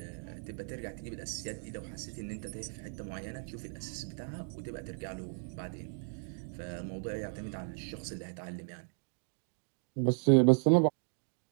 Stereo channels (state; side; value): silent; left; 54 dB below the other